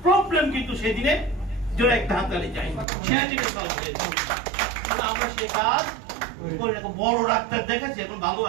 প্রবলেম কিন্তু সেদিনে জোরে একটা হাততালি চাই, সেদিনে সলভ হয়ে যেত। আমরা সে কাজ করে রাখবো। বড় ডাক্তার দেখেছি, এখন ভালো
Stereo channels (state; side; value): drops out; left; at 2.9 s